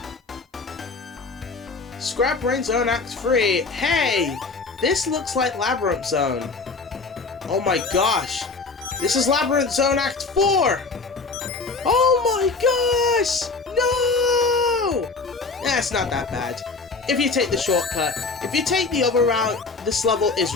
Scrap Brain Zone Act 3. Hey! This looks like Labyrinth Zone. Oh my gosh! This is Labyrinth Zone Act 4! Oh my gosh! No! That's not that bad. If you take the shortcut. If you take the other route, this level is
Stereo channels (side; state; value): right; quieter; 4.2 dB